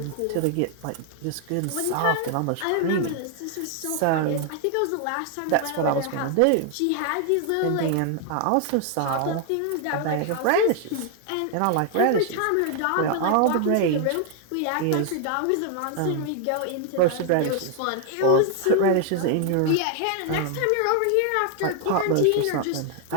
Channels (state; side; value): different; both; correlation 0.00